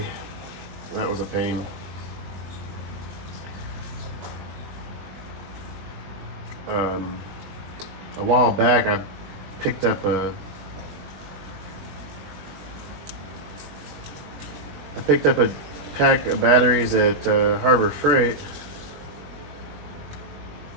That was a pain. A while back, I picked up a pack of batteries at Harbor Freight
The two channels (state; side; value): late; left; 20 ms